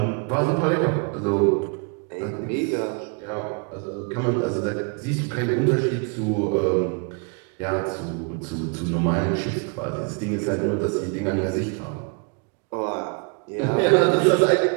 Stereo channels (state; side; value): quieter; left; 36.8 dB